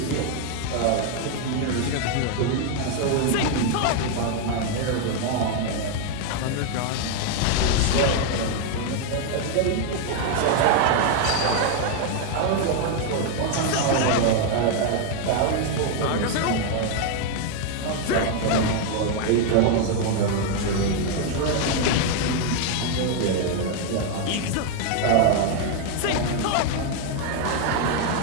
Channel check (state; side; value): different; both; correlation 0.01